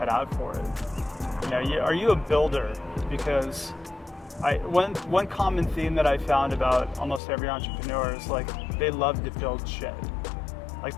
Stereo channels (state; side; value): drops out; right; at 7.2 s